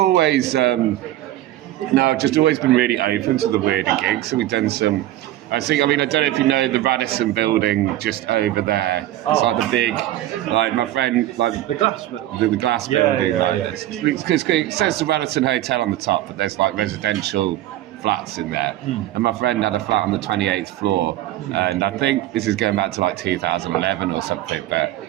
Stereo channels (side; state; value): left; quieter; 14.3 dB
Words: just always been really open to the weirder gigs. So we've done some. I don't know if you know the Radisson building just over there. It's like the big, like my friend, like the glass building. The glass building. Because it says the Radisson Hotel on the top, but there's like residential flats in there. And my friend had a flat on the 28th floor, and I think this is going back to like 2011 or something, but